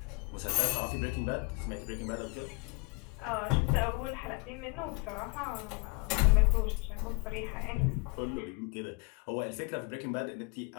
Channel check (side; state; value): right; quieter; 29.5 dB